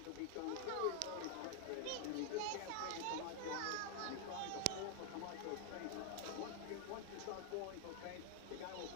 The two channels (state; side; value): different; both; correlation 0.00